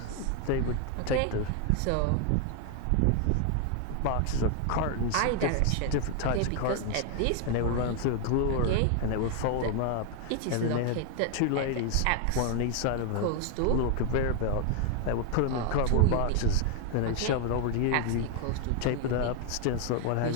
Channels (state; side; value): different; both; correlation 0.00